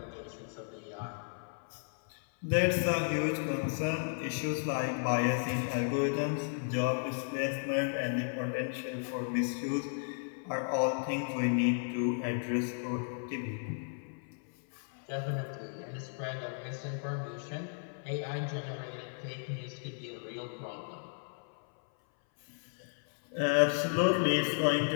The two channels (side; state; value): right; silent; 55 dB below the other